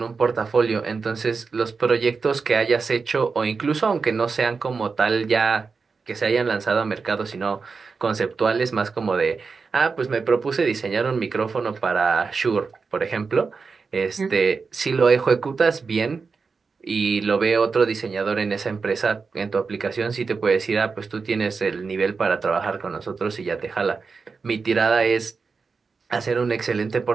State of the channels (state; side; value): quieter; left; 4.8 dB